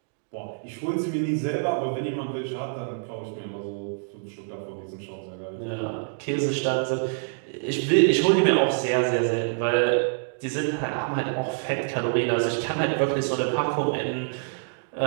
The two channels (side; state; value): left; silent; digital silence